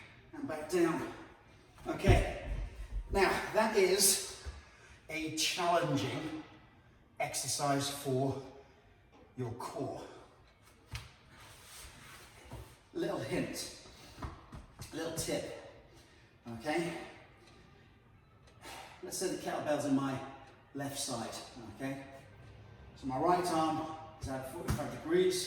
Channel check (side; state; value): both; identical; correlation 1.00